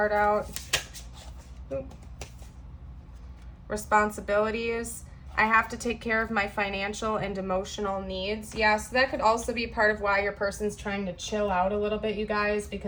out. Oop. Responsibilities. I have to take care of my financial and emotional needs. Yeah, so that could also be part of why your person's trying to chill out a little bit, you guys,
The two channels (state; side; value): identical; both; correlation 1.00